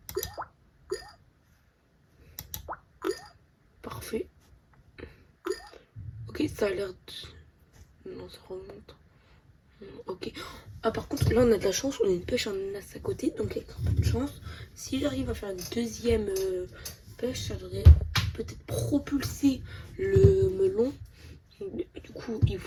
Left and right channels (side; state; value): both; identical; correlation 1.00